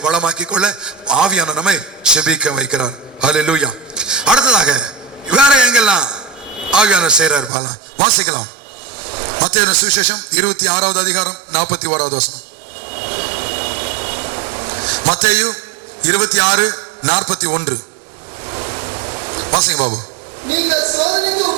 வளமாக்கிக் கொள்ள ஆவியான நம்மை ஜெபிக்க வைக்கிறார். ஹல்லேலூயா. அடுத்ததாக வேற எங்கெல்லாம் ஆவியானவர் செய்றார் பாலாம், வாசிக்கலாம். மத்தேயு சுவிசேஷம் 26வது அதிகாரம் 41வது வசனம். மத்தேயு 26:41 வாசிங்க பாபு.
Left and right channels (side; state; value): left; drops out; at 7.5 s